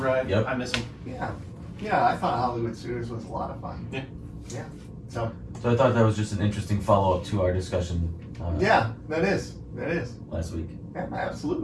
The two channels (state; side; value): identical; both; correlation 1.00